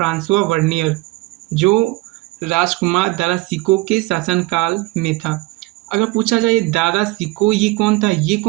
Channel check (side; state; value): left; quieter; 20.8 dB